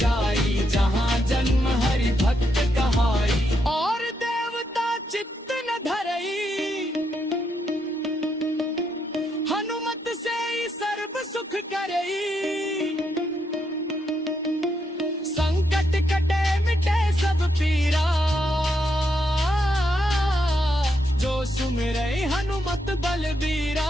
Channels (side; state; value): both; normal; correlation 0.79